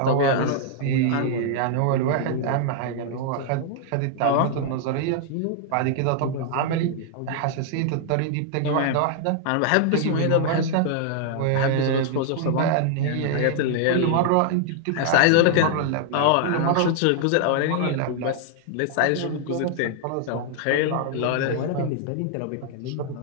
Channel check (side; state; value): both; different; correlation 0.00